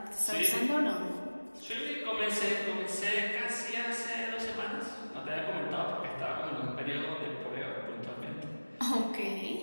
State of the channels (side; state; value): both; inverted; correlation -1.00